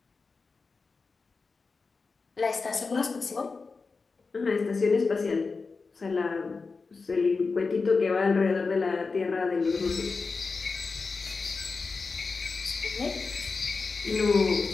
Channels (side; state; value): right; quieter; 4.4 dB